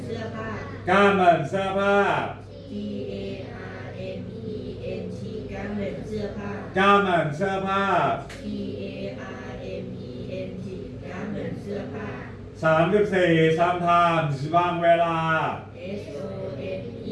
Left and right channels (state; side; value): identical; both; correlation 1.00